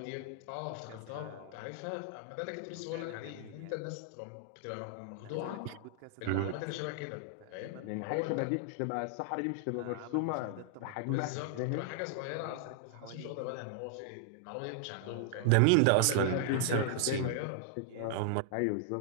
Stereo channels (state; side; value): different; both; correlation -0.01